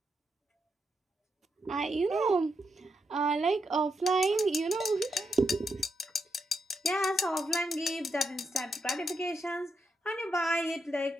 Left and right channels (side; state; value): both; normal; correlation 0.82